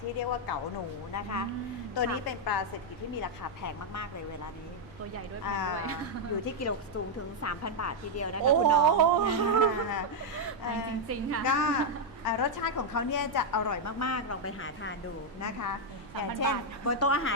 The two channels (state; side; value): noise; right; rumble, 23 dB below the sound